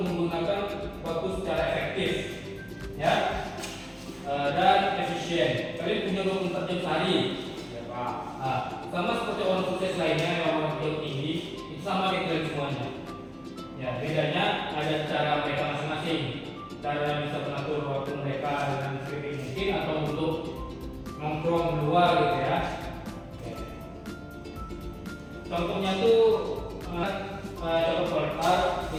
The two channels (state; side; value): identical; both; correlation 1.00